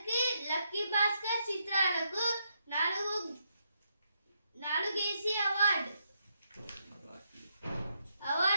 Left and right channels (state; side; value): inverted; both; correlation -0.79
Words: లక్కీ భాస్కర్ చిత్రాలకు 4